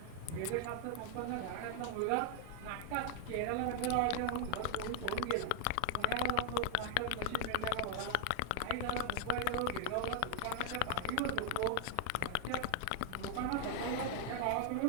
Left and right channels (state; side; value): different; both; correlation 0.00